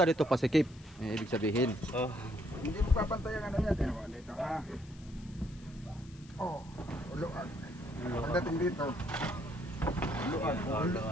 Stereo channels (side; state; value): left; noise; hiss, 25 dB below the sound